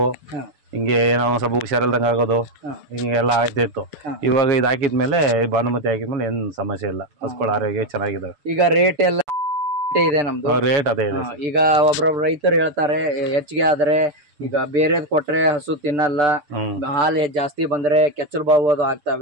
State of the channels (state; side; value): late; left; 6.9 ms